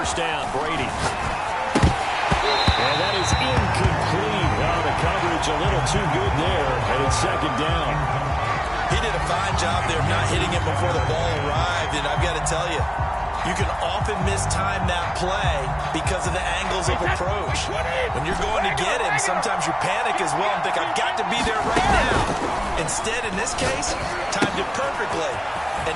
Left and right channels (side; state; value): both; identical; correlation 1.00